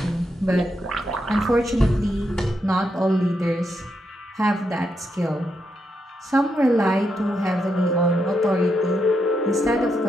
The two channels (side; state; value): both; normal; correlation 0.82